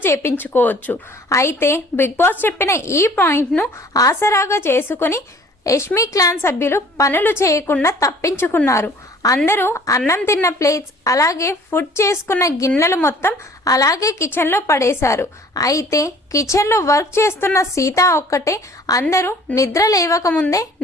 చేపించుకోవచ్చు. అయితే బిగ్ బాస్ చెప్పిన ఈ పాయింట్ను ఆసరాగా చేసుకుని యష్మి క్లాన్ సభ్యులు పనులు చేయకుండా తప్పించుకున్నారు. అందరూ అన్నం తిన్న ప్లేట్స్ అలాగే ఫుడ్ చేసుకున్న గిన్నెలు మొత్తం అలాగే కిచెన్లో పడేశారు. అయితే కిచెన్లో వర్క్ చేస్తున్న సీత ఒక్కటే అందరూ నిద్ర లేవకముందే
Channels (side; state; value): both; normal; correlation 0.52